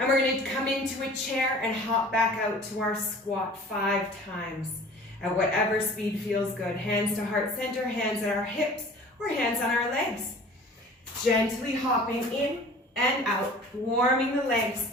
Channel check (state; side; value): normal; both; correlation 0.45